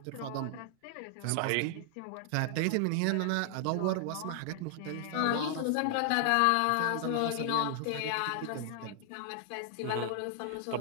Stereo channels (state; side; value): different; both; correlation 0.00